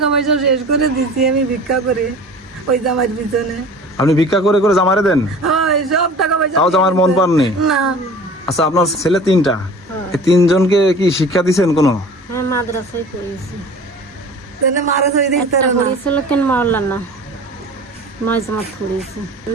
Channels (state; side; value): normal; both; correlation 0.42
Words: পয়সা শেষ করে দিচ্ছি আমি ভিক্ষা করে ওই জামাইয়ের পিছনে। আপনি ভিক্ষা করে করে জামারে দেন? সব টাকা পয়সা তাও জামার মন পাননি না। আচ্ছা, আপনার ছেলে তিনটা, এই তিনজনকে কি শিক্ষা দিচ্ছেন কোনো? হ্যাঁ, মাদ্রাসায় পড়েছি।